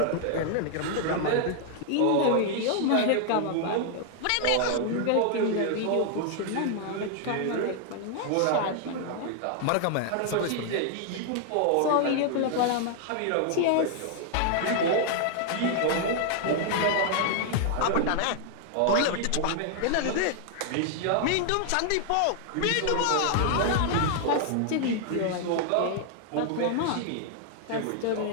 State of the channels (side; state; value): both; different; correlation 0.00